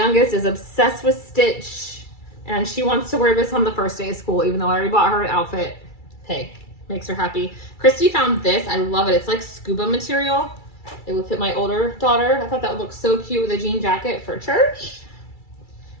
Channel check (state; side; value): late; right; 2.3 ms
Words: is obsessed with Stitch, and she wants to wear this on the first day of school, even though I already bought her an outfit. Hey, makes her happy. Christy found this. I love it. It's like scuba material. It would fit my older daughter. I thought that would look so cute with a jean jacket for church.